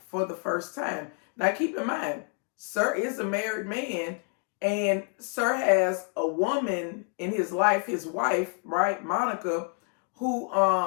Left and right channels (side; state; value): right; quieter; 38.8 dB